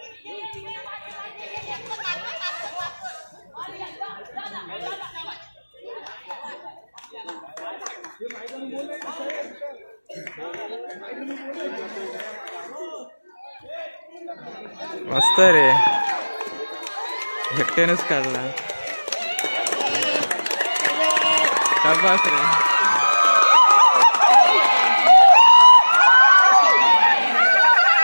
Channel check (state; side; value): inverted; both; correlation -1.00